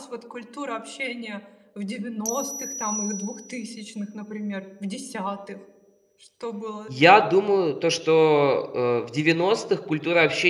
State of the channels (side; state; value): both; identical; correlation 1.00